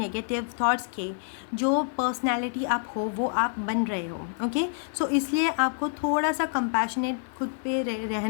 थॉट्स के जो पर्सनालिटी आप हो, वो आप बन रहे हो, ओके। सो इसलिए आपको थोड़ा सा कंपैशनेट खुद पे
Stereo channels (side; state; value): right; silent; 60 dB below the other